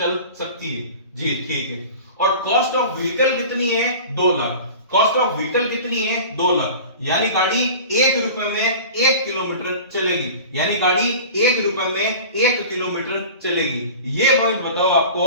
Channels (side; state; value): both; inverted; correlation -0.38